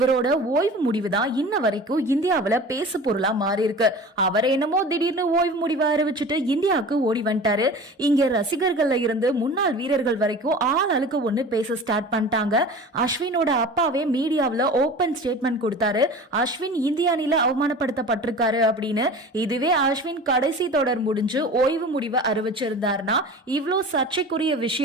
ஓய்வு முடிவு தான் இன்ன வரைக்கும் இந்தியாவில பேசு பொருளா மாறி இருக்கு. அவர் என்னமோ திடீர்னு ஓய்வு முடிவை அறிவிச்சுட்டு இந்தியாவுக்கு ஓடி வந்துட்டாரு. இங்க ரசிகர்கள்ல இருந்து முன்னாள் வீரர்கள் வரைக்கும் ஆள் அழுக்க ஒண்ணு பேச ஸ்டார்ட் பண்ணிட்டாங்க. அஸ்வினோட அப்பாவே மீடியாவில ஓபன் ஸ்டேட்மெண்ட் கொடுத்தாரு. அஸ்வின் இந்திய அணில அவமானப்படுத்தப்பட்டிருக்காரு அப்படின்னு. இதுவே அஸ்வின் கடைசி தொடர் முடிஞ்சு ஓய்வு முடிவை அறிவிச்சிருந்தாருன்னா இவ்வளோ சர்ச்சைக்குரிய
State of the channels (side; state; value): both; normal; correlation 0.37